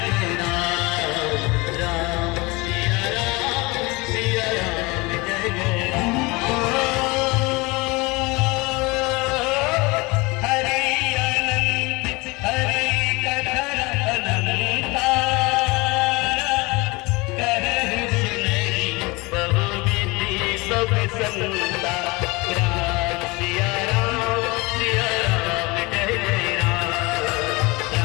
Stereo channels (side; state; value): right; quieter; 24.7 dB